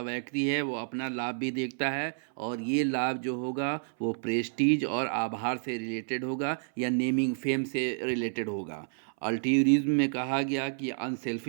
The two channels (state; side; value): silent; left; 58 dB below the other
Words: व्यक्ति है वो अपना लाभ भी देखता है, और ये लाभ जो होगा वो प्रेस्टीज और आभार से रिलेटेड होगा या नेमिंग फेम से रिलेटेड होगा। अल्ट्रुइज्म में कहा गया कि